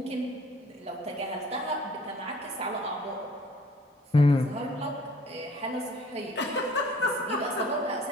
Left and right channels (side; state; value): both; normal; correlation 0.53